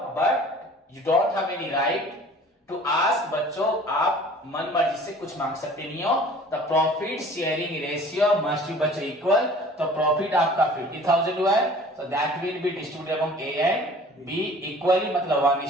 but you don't have any right to ask, बच्चों आप मन मर्जी से कुछ मांग सकते नहीं हो। The profit sharing ratio must be बच्चों इक्वल, तो प्रॉफिट आपका 50,000 हुआ है, so that will be distributed among A and be equally, मतलब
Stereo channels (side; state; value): both; normal; correlation 0.47